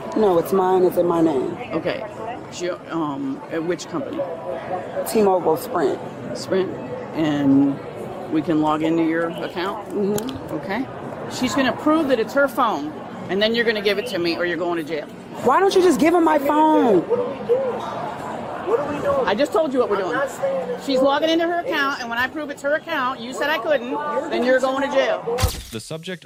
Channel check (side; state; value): both; identical; correlation 1.00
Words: No, it's mine. It's in my name. Okay. At which company? T-Mobile Sprint. Sprint. And we can log into your account? Mm-hmm. Okay. She's going to prove that it's her phone, and then you're going to give it to me, or you're going to jail. Why don't you just give him my phone? What are we doing? I just told you what we're doing. She's logging into her account, and when I prove it's her account, you said I couldn't, then you're going to jail. The subject